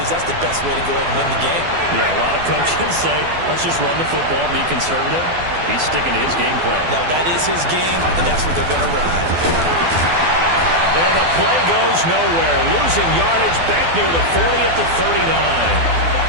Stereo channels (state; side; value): late; left; 12 ms